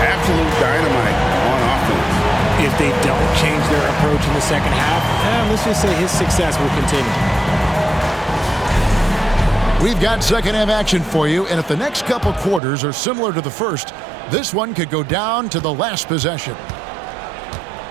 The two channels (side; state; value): left; drops out; at 12.6 s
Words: dynamite on offense. If they don't change their approach in the second half, let's just say his success will continue. We've got second half action for you, and if the next couple quarters are similar to the first, this one could go down to the last possession.